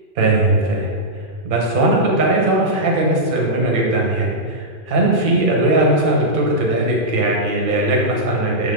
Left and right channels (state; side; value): late; left; 2.4 ms